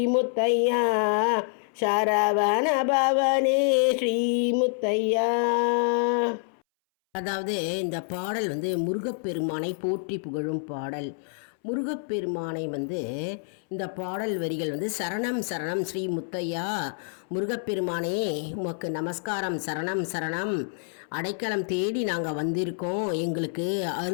முத்தையா, சரவண பவனே ஸ்ரீ முத்தையா. அதாவது இந்த பாடல் முருகப்பெருமானை போற்றி புகழும் பாடல். முருகப்பெருமானை இந்த பாடல் வரிகள் சரணம் சரணம் ஸ்ரீ முத்தையா, முருகப்பெருமானே உமக்கு நமஸ்காரம், சரணம் சரணம், அடைக்கலம் தேடி நாங்கள் வந்திருக்கோம், எங்களுக்கு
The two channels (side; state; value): right; silent; 60 dB below the other